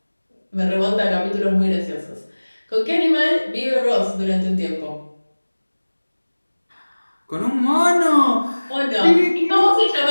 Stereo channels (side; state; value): both; inverted; correlation -1.00